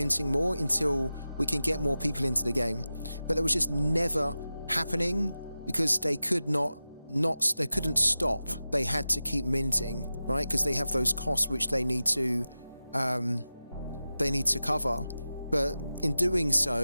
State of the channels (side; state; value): both; inverted; correlation -0.94